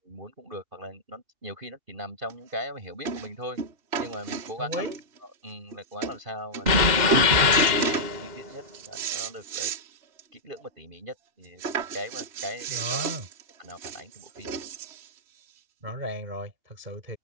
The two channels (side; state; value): left; late; 2.7 ms